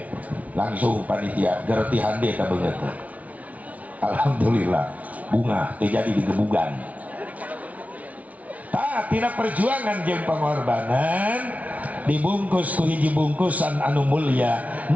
langsung panitia gerti hande ka beungeut. Alhamdulillah bunga terjadi di gebugan. Tina perjuangan jeung pengorbanan dibungkus ku hiji bungkusan anu mulia.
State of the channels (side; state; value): left; late; 0.069 ms